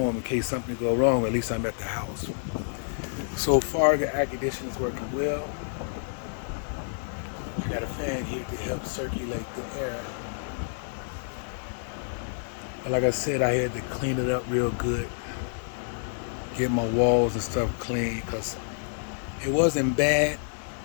in case something go wrong. At least I'm at the house. So far, the air conditioner is working well. I got a fan here to help circulate the air. But like I said, I had to clean it up real good, get my walls and stuff clean, because it wasn't bad,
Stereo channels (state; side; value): silent; right; digital silence